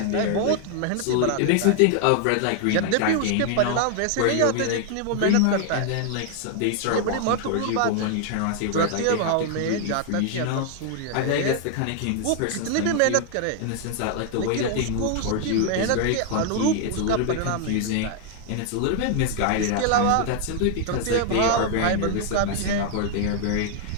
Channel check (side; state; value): both; different; correlation 0.00